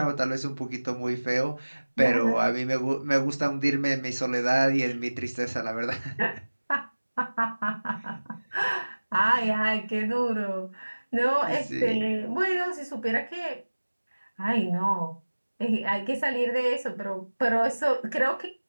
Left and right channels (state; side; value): inverted; both; correlation -1.00